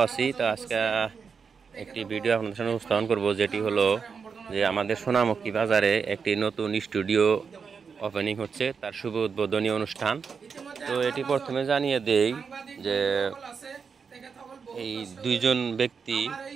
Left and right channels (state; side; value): quieter; left; 5.8 dB